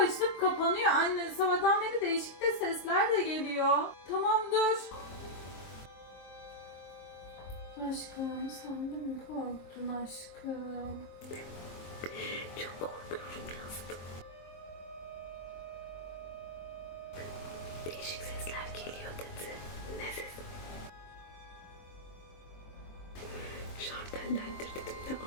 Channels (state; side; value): late; right; 23 ms